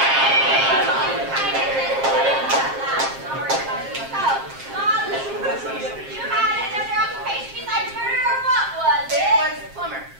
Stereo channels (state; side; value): late; left; 7.5 ms